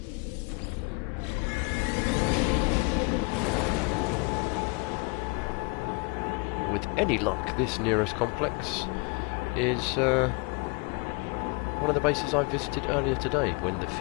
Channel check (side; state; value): right; quieter; 30.8 dB